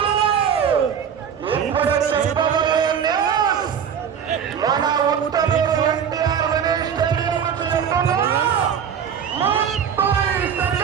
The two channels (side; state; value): left; quieter; 7.9 dB